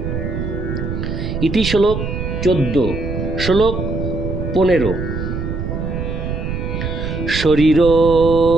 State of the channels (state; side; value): noise; right; rumble, 4 dB below the sound